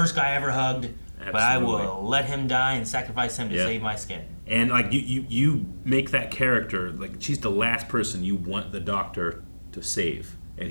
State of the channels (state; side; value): inverted; both; correlation -1.00